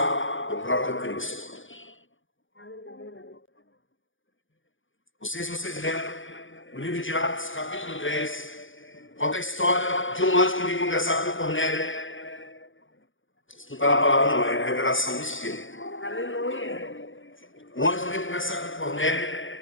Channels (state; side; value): late; right; 0.57 ms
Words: o próprio Cristo. Não sei se vocês lembram, no livro de Atos, capítulo 10, conta a história de um anjo que veio conversar com Cornélio. Isso não está na palavra, não, é a revelação do Espírito. Aleluia. O anjo veio conversar com